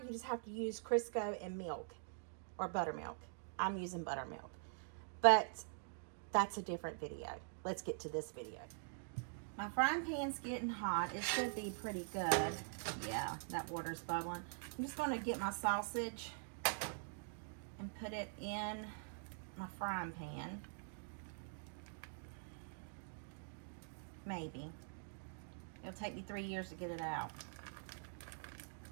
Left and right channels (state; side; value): silent; left; digital silence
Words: just have to use Crisco and milk or buttermilk. I'm using buttermilk, but that's a different video. Let's get to this video. My frying pan's getting hot. It should be pretty good. Yeah, that water's bubbling. I'm just going to get my sausage and put it in my frying pan. Maybe. It'll take me 3 years to get it out.